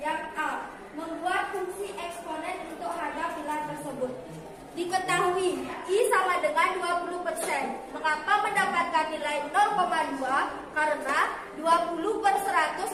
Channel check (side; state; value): both; identical; correlation 1.00